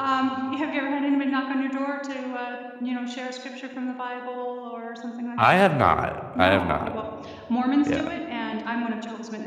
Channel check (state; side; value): identical; both; correlation 1.00